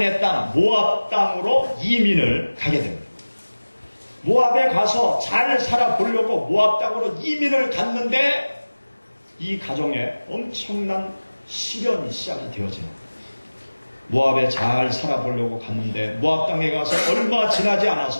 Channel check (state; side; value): inverted; both; correlation -1.00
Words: 땅 모압 땅으로 이민을 가게 됩니다. 모압에 가서 잘 살아보려고 모압 땅으로 이민을 갔는데 이 가정에 엄청난 시련이 시작이 되어집니다. 모압에 잘 살아보려고 갔는데 모압 땅에 가서 얼마 지나지